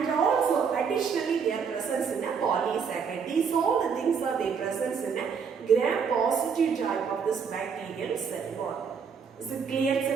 also additionally they are present in a polysaccharide. These all the things are they present in a gram positive type of this bacterial cell wall. Is it clear,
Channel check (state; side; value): quieter; left; 6.3 dB